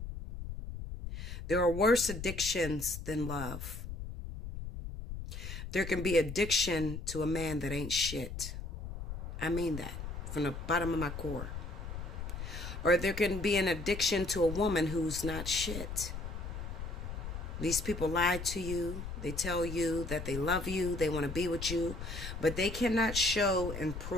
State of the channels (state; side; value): noise; left; rumble, 7 dB below the sound